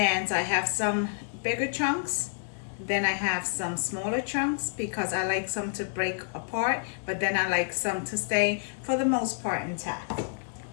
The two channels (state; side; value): silent; right; digital silence